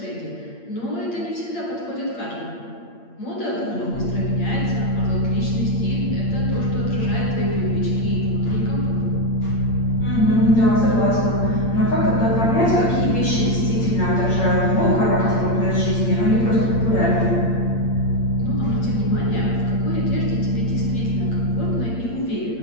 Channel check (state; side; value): late; right; 8.7 ms